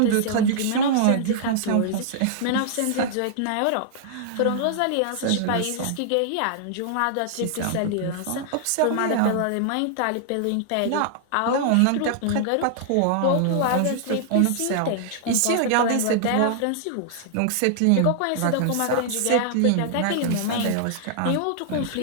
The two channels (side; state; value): both; different; correlation -0.01